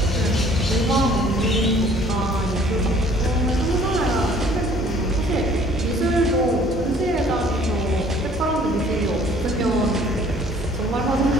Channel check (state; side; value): normal; both; correlation 0.55